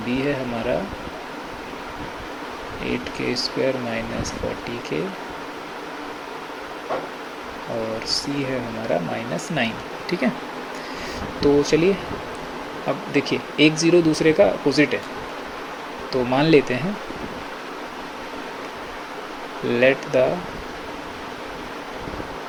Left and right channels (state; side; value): identical; both; correlation 1.00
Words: बी है हमारा 8k स्क्वायर माइनस 40k, और सी है हमारा माइनस 9, ठीक है। तो चलिए अब देखिए, एक ज़ीरो दूसरे का अपोजिट है। तो मान लेते हैं let the